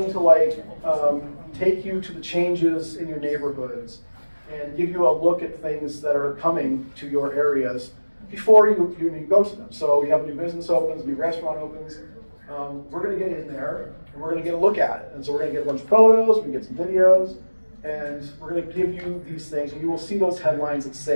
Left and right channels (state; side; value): inverted; both; correlation -1.00